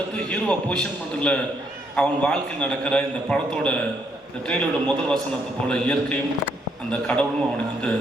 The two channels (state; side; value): normal; both; correlation 0.72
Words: ஹீரோவை பொசிஷன் பண்ணுறதுல அவன் வாழ்க்கை நடக்கிற இந்த படத்தோட இந்த ட்ரெயிலரோட முதல் வசனத்தை போல் இயற்கையும் அந்த கடவுளும் அவனுக்கு வந்து